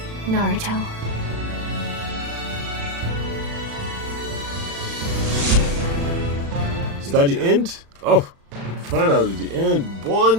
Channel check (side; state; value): left; late; 36 ms